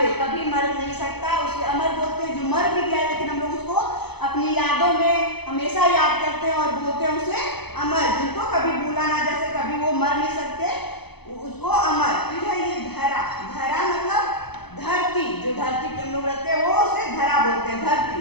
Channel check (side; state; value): right; late; 0.98 ms